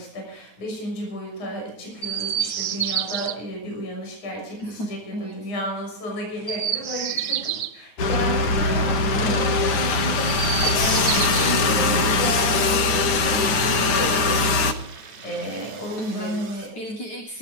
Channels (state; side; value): late; right; 9.3 ms